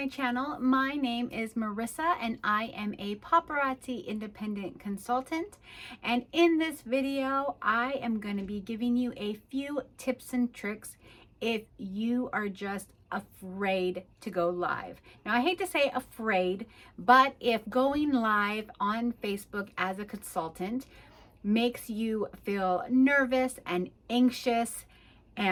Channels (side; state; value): both; identical; correlation 1.00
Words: channel. My name is Marissa and I am a paparazzi independent consultant. And in this video, I am going to be giving you a few tips and tricks if you are just afraid to go live. Now, I hate to say afraid, but if going live on Facebook as a consultant makes you feel nervous and anxious